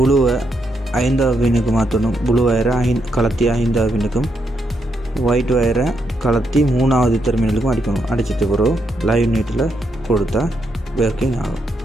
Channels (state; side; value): normal; both; correlation 0.79